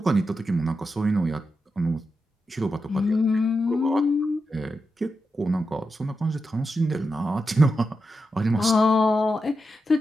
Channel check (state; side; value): normal; both; correlation 0.88